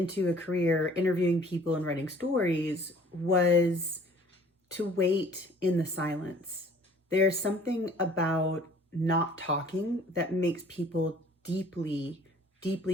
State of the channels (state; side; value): normal; both; correlation 0.53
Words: a career interviewing people and writing stories was to wait in the silence. There's something about not talking that makes people deeply,